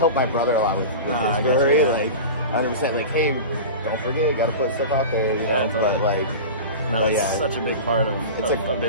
my brother-in-law with his brewery, like 100%. Like, hey, don't forget, you got to put stuff out there. You know? Totally. But like. No, it's such a big part of a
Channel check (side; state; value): both; inverted; correlation -0.30